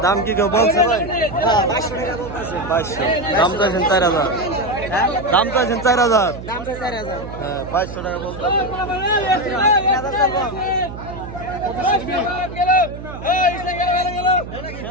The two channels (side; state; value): right; noise; hum, 11 dB below the sound